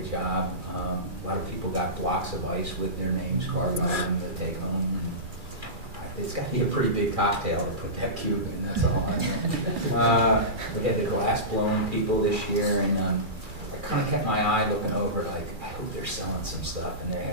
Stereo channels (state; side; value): late; left; 2.4 ms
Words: job. A lot of people got blocks of ice with their names carved on them to take home. It's got to be a pretty big cocktail to put that cube in, that's all I know. We had the glass blowing people this year, and I kind of kept my eye looking over, like, I hope they're selling some stuff, and